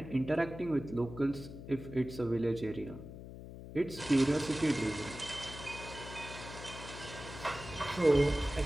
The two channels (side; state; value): left; noise; hum, 12 dB below the sound